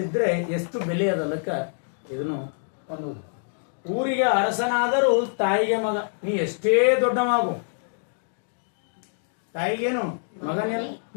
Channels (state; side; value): silent; right; digital silence